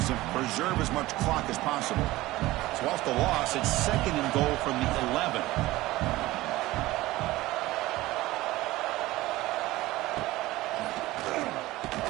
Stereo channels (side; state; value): left; quieter; 18.1 dB